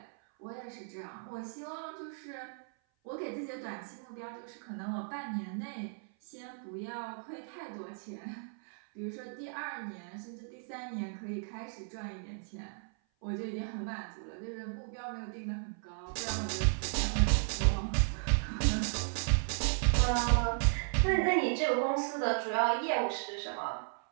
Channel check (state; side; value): silent; left; 54 dB below the other